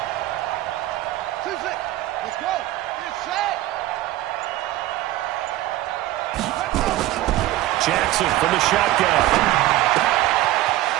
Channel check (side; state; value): left; quieter; 15.5 dB